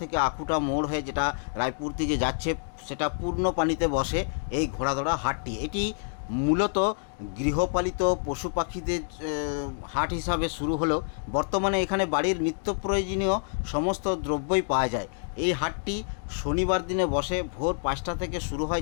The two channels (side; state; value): right; silent; digital silence